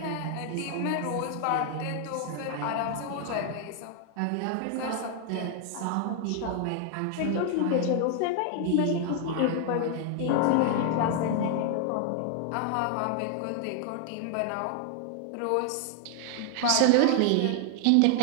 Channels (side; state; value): both; different; correlation 0.00